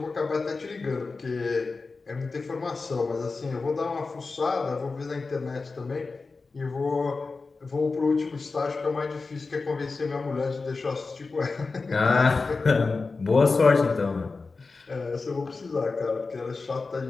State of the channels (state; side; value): quieter; right; 4.1 dB